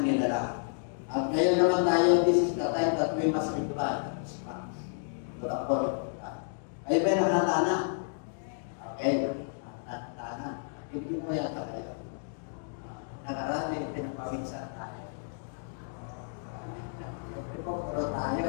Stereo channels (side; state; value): right; silent; digital silence